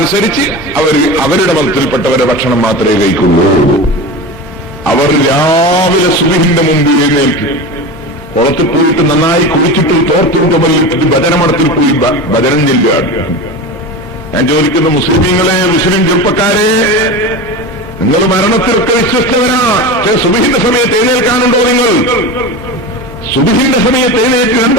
അവരുടെ മതത്തിൽപ്പെട്ടവരുടെ ഭക്ഷണം മാത്രമേ കഴിക്കുള്ളൂ. അവർ രാവിലെ സുബഹിന്റെ മുമ്പ് എഴുന്നേൽക്കും, കുളത്തിൽ പോയിട്ട് നന്നായി കുളിച്ചിട്ട് തോർത്തുകൊണ്ട് വലിയിട്ട് ഭജനമടത്തിൽ പോയി ഭജനം ചെല്ലുകയാണ്. ഞാൻ ചോദിക്കുന്ന മുസ്ലിമീങ്ങളെ, മുസ്ലിം ചെറുപ്പക്കാരെ, നിങ്ങൾ മരണത്തിലൊക്കെ വിശ്വസ്തവരാ. സുബഹിന്റെ സമയത്ത് എഴുന്നേൽക്കാനുണ്ടോ നിങ്ങൾ? സുബഹിന്റെ സമയത്ത് എഴുന്നേറ്റ് 2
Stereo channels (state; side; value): normal; both; correlation 0.27